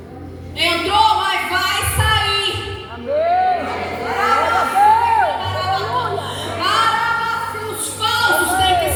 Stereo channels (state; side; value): identical; both; correlation 1.00